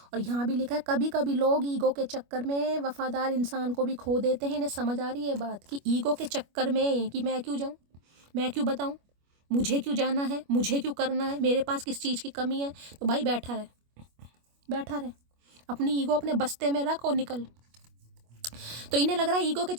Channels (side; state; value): left; late; 25 ms